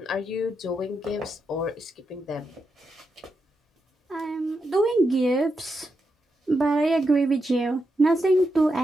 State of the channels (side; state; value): both; normal; correlation 0.85